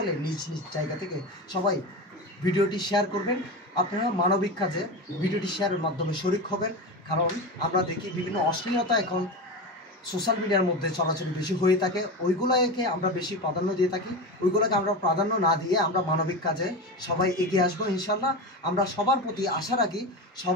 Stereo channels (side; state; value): both; normal; correlation 0.22